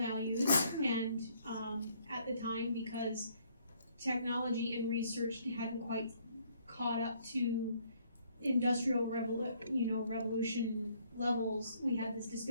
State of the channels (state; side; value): inverted; both; correlation -0.65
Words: and at the time, because technology and research hadn't quite caught up to industrial revolution levels, we had this